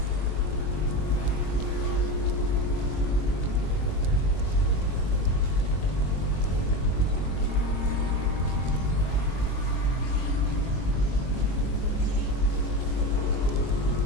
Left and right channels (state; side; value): late; right; 22 ms